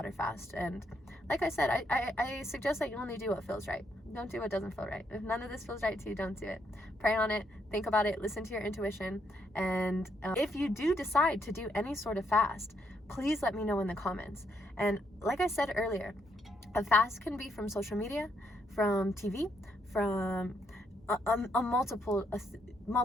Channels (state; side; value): normal; both; correlation 0.75